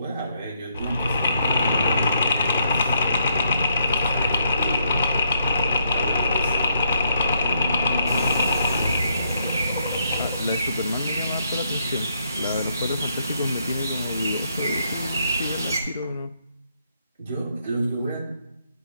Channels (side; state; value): both; inverted; correlation -0.75